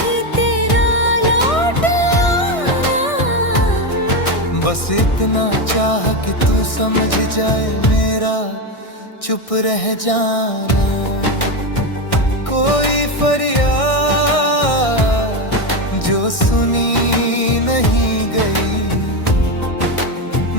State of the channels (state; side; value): late; right; 1.6 ms